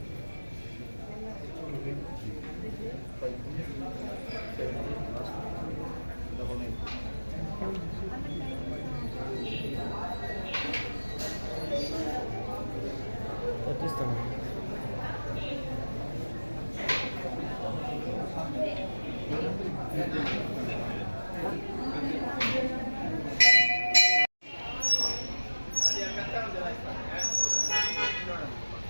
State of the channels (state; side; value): inverted; both; correlation -1.00